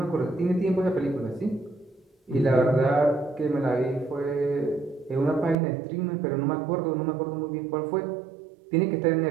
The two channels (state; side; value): drops out; left; at 5.6 s